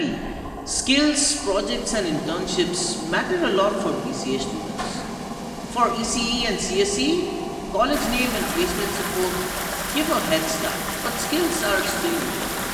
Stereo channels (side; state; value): both; identical; correlation 1.00